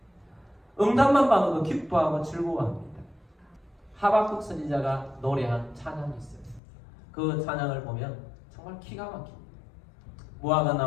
응답만 받아도 기뻐하고 즐거워합니다. 하박국 선지자가 노래한 찬양이 있어요. 그 찬양을 보면 정말 기가 막힙니다. 무화과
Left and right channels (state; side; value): drops out; right; at 6.6 s